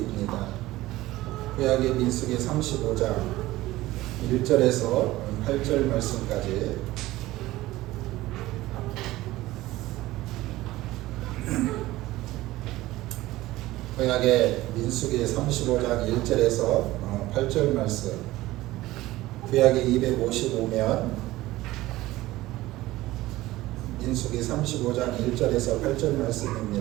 구약의 민수기 35장 1절에서 8절 말씀까지 구약의 민수기 35장 1절에서 8절 말씀, 구약이 255면 민수기 35장 1절에서 8절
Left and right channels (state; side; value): quieter; left; 17.3 dB